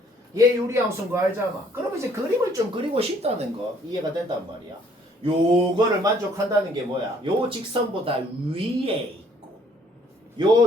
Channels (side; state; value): both; normal; correlation 0.62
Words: 얘 유리함수인 거 알잖아. 그럼 이제 그림을 좀 그리고 싶다는 거 이해가 된단 말이야. 요거를 만족한다는 게 뭐야? 요 직선보다 위에 있고